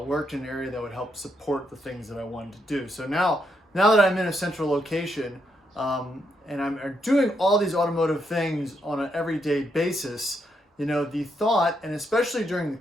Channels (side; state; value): both; normal; correlation 0.79